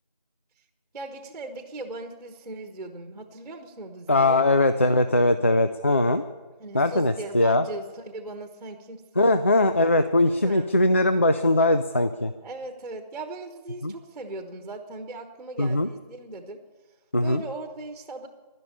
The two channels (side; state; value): both; inverted; correlation -0.65